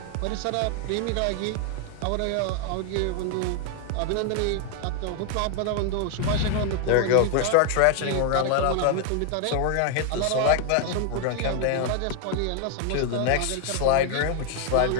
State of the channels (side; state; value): both; different; correlation 0.00